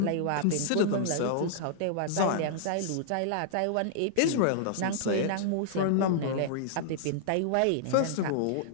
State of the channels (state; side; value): different; both; correlation -0.01